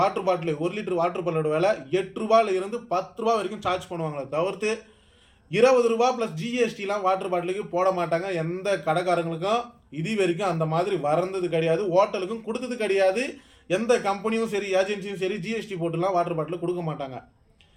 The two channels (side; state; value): both; identical; correlation 1.00